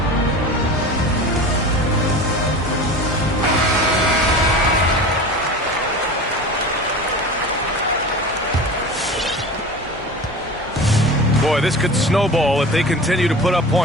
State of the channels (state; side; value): normal; both; correlation 0.34